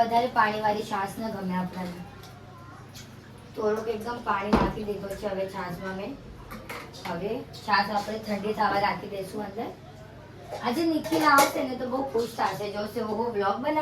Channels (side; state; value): both; identical; correlation 1.00